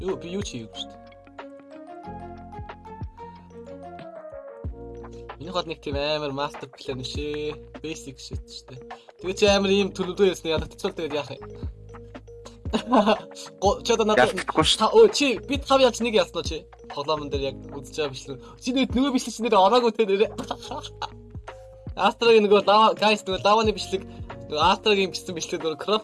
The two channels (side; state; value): both; identical; correlation 1.00